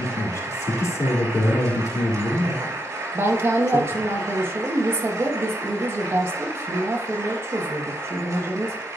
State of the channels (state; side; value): normal; both; correlation 0.81